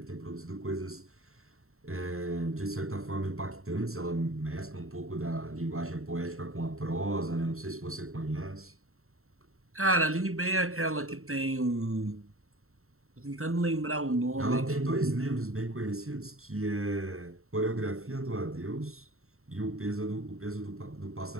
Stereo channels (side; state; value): left; late; 0.63 ms